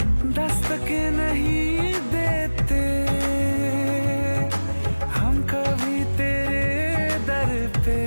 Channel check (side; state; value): both; inverted; correlation -1.00